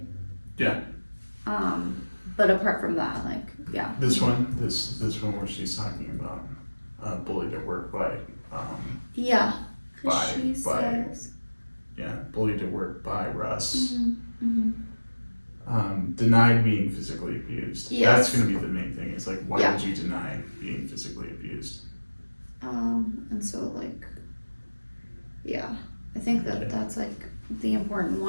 Yeah. But apart from that, like, yeah. This one where she's talking about bullied at work by Yeah. 'Cause By- she by- says. bullied at work by Russ. Mm-hmm. Denied being physically abused. Yes. That's gonna be the main thing. Is like, why Yeah. would you deny being physically abused? And so like, yeah, I think that's like the important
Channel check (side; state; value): both; inverted; correlation -1.00